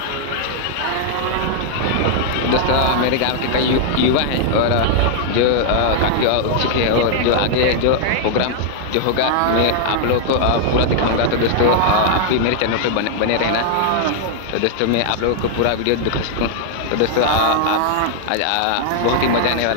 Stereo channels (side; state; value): both; different; correlation -0.01